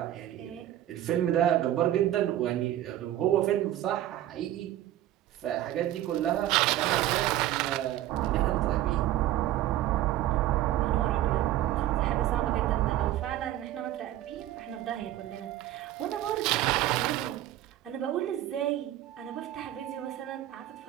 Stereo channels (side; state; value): left; quieter; 13.4 dB